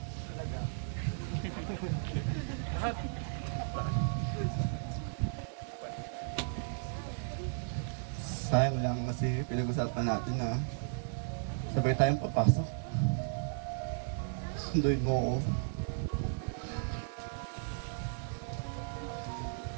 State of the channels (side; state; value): left; silent; 54 dB below the other